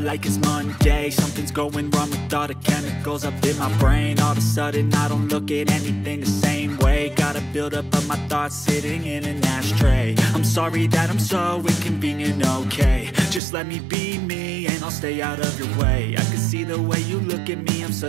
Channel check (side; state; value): left; drops out; at 13.4 s